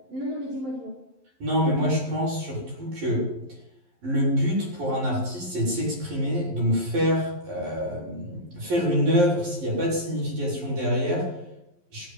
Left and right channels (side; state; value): left; late; 11 ms